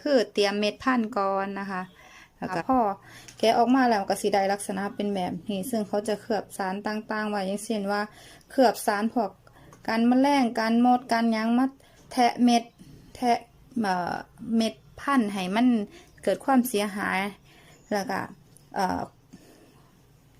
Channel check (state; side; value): identical; both; correlation 1.00